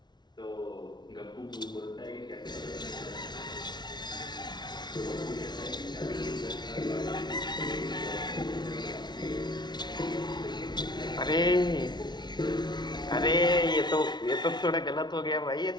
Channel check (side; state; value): right; late; 0.20 ms